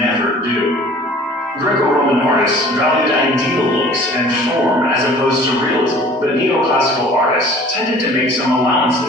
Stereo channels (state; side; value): normal; both; correlation 0.48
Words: do. Greco-Roman artists valued ideal looks and form as opposed to realism, but neoclassical artists tended to make some